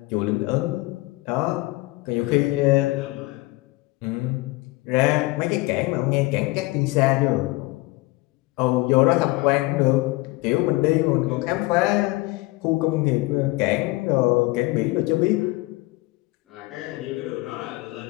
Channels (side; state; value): right; quieter; 21.5 dB